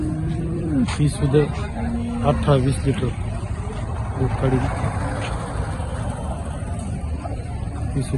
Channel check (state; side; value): identical; both; correlation 1.00